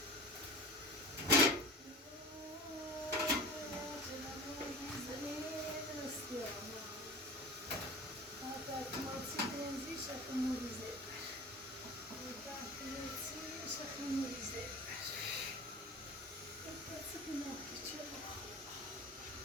شخص موریزه شخص موریزه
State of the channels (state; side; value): normal; both; correlation 0.36